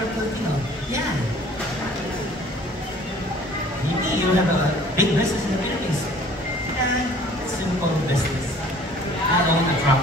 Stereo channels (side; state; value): both; normal; correlation 0.52